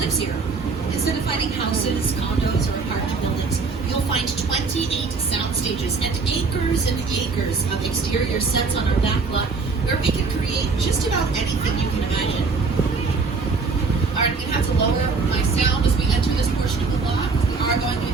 here. Instead of finding houses, condos, or apartment buildings, you'll find 28 sound stages and acres of exterior sets on our back lot where we can create just about anything you can imagine. Alright, I'm going to have to lower my sound as we enter this portion of the lot. We are going to be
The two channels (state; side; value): quieter; left; 4.5 dB